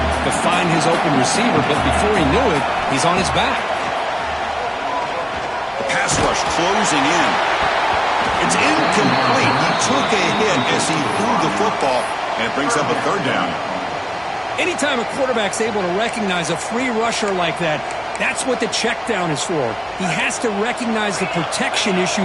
find his open receiver, but before he knew it, he's on his back. The pass rush closing in. It's incomplete. He took a hit as he threw the football, and it brings up a third down. Anytime a quarterback's able to recognize a free rusher like that, that's what the check down is for. He has to recognize the protection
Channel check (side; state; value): both; identical; correlation 1.00